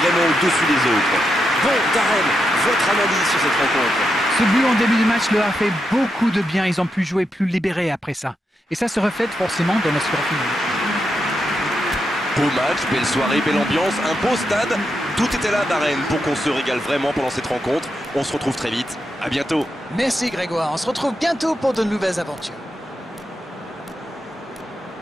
au-dessus des autres. Bon, Darren, votre analyse sur cette rencontre? Ce but en début de match leur a fait beaucoup de bien. Ils ont pu jouer plus libérés après ça. Et ça se reflète forcément dans le score final. Beau match, belle soirée, belle ambiance, un beau stade. Tout était là, Darren, pour qu'on se régale vraiment pendant cette rencontre. On se retrouve très vite. À bientôt. Merci Grégoire. On se retrouve bientôt pour de nouvelles aventures.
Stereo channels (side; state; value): both; normal; correlation 0.85